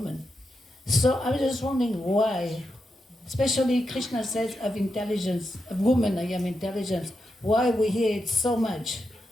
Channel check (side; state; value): both; normal; correlation 0.86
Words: So I was just wondering why. Especially Krishna says of intelligence, of woman I am intelligence. Why we hear it so much